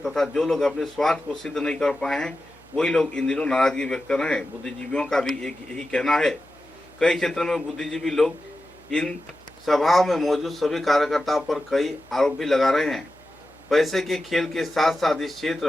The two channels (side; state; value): left; noise; hum, 29 dB below the sound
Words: तथा जो लोग अपने स्वार्थ को सिद्ध नहीं कर पाए हैं वही लोग इन दिनों नाराजगी व्यक्त कर रहे हैं। बुद्धिजीवियों का भी एक यही कहना है। कई क्षेत्रों में बुद्धिजीवी लोग इन सभाओं में मौजूद सभी कार्यकर्ताओं पर कई आरोप भी लगा रहे हैं। पैसे के खेल के साथ साथ इस